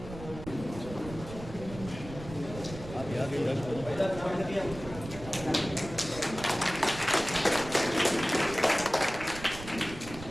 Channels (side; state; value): right; noise; rumble, 13 dB below the sound